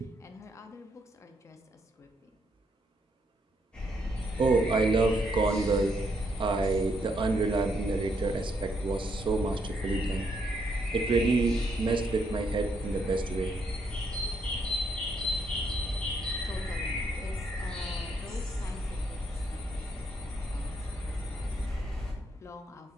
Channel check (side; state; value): both; normal; correlation 0.75